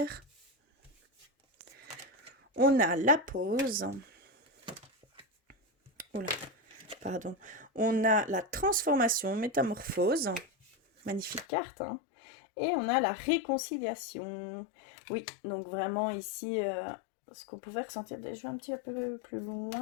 On a la pause. Oula, pardon. On a la transformation, métamorphose. Magnifique carte, hein. Et on a la réconciliation. Oui, donc vraiment ici, ce qu'on pouvait ressentir, je vais un petit peu plus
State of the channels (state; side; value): drops out; right; at 11.5 s